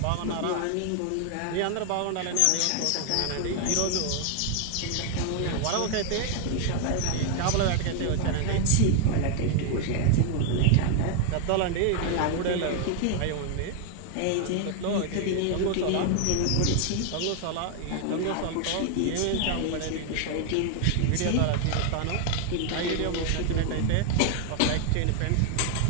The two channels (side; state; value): both; different; correlation 0.00